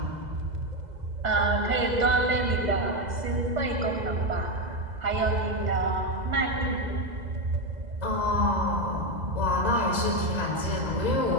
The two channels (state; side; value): late; left; 2.0 ms